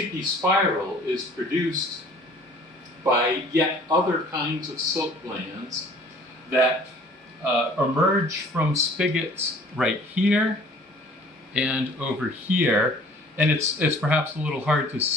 spiral is produced by yet other kinds of silk glands that emerge from spigots right here and over here. And it's perhaps a little hard to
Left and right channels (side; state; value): both; normal; correlation 0.52